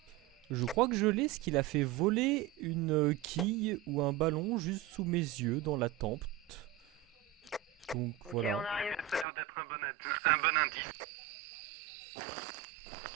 Je crois que je l'ai, ce qu'il a fait voler une quille ou un ballon juste sous mes yeux dans la tempe. Donc voilà. Ça a l'air d'être un bon indice.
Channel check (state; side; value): drops out; left; at 9.2 s